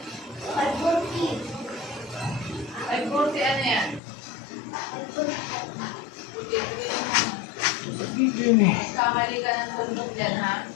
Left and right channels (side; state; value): right; drops out; at 4.0 s